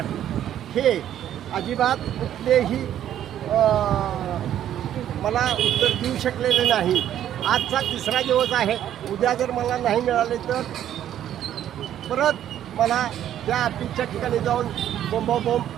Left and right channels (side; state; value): left; quieter; 11.0 dB